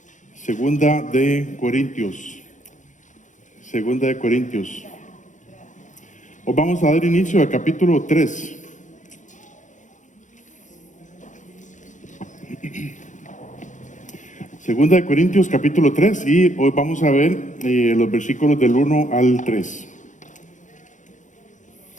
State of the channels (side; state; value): right; late; 0.36 ms